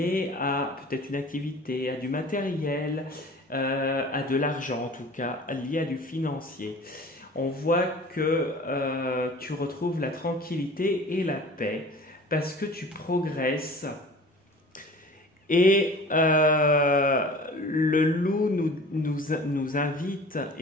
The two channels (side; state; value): both; normal; correlation 0.43